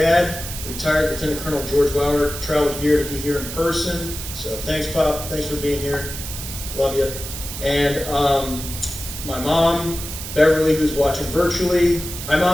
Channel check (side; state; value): right; noise; hiss, 8 dB below the sound